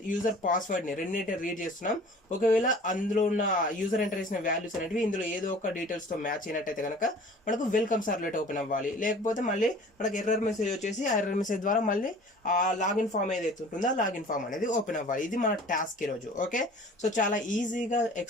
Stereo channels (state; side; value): normal; both; correlation 0.46